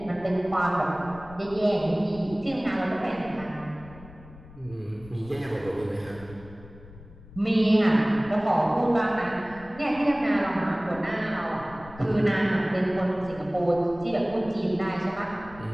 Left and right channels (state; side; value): noise; left; rumble, 19 dB below the sound